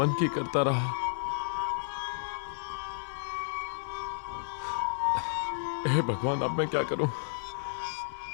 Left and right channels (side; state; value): right; silent; digital silence